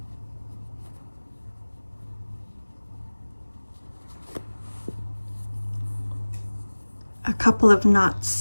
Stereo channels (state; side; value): inverted; both; correlation -1.00